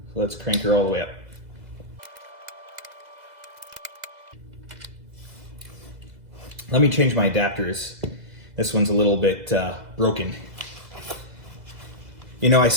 So let's crank her all the way up. Let me change my adapters. This one's a little bit broken. You know, I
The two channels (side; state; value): left; late; 2.0 ms